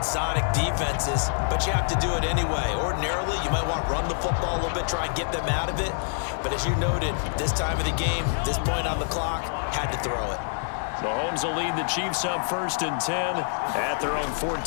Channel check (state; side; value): silent; right; digital silence